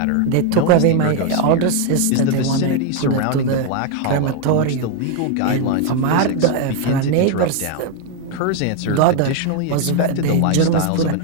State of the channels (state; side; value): different; both; correlation 0.01